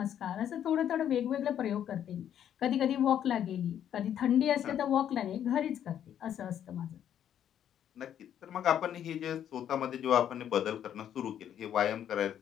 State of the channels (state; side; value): quieter; right; 9.9 dB